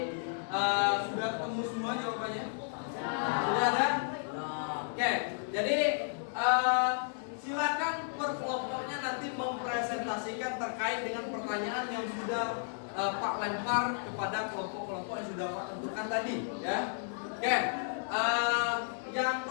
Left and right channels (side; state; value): right; silent; digital silence